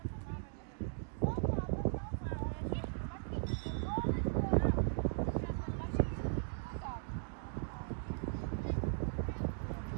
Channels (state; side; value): silent; left; digital silence